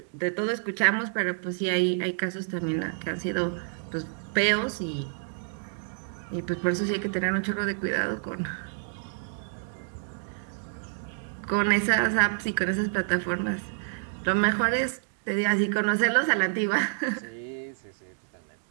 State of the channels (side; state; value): left; silent; digital silence